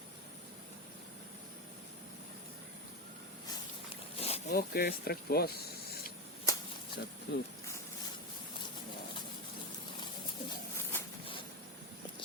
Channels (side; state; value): both; normal; correlation 0.14